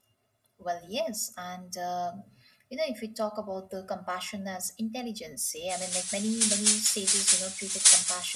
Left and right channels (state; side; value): identical; both; correlation 1.00